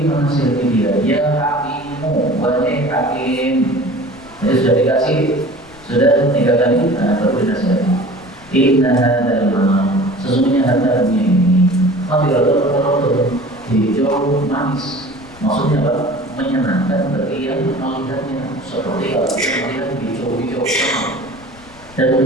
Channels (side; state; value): left; noise; rumble, 24 dB below the sound